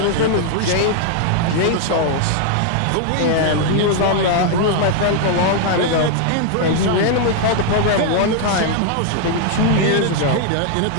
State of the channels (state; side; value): different; both; correlation 0.00